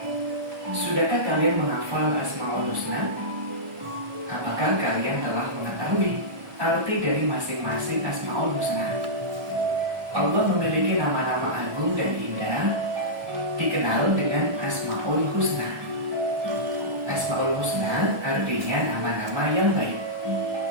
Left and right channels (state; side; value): late; left; 1.2 ms